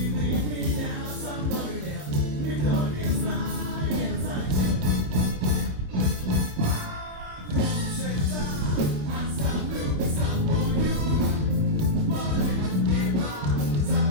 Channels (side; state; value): left; late; 26 ms